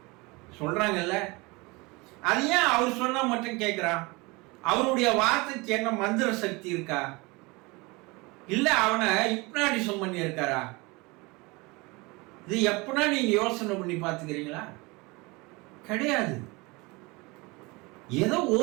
சொல்றாங்கல்ல, அது ஏன் அவர் சொன்னா மட்டும் கேட்கிறான்? அவருடைய வார்த்தைக்கு என்ன மந்திர சக்தி இருக்கா? இல்ல அவனை ஹிப்னாட்டிசம் பண்ணி இருக்காரா? இது எப்பனா நீங்க யோசனை பண்ணி பார்த்துக்கிறீங்களா? கிடையாது. ஏதோ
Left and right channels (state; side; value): quieter; left; 25.1 dB